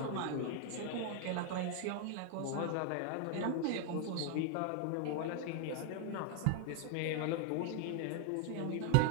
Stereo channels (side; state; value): both; different; correlation 0.00